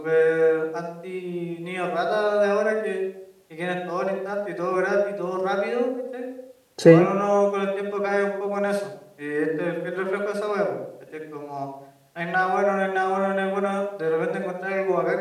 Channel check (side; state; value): both; identical; correlation 1.00